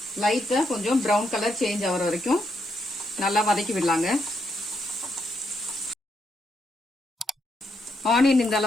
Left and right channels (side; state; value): both; normal; correlation 0.79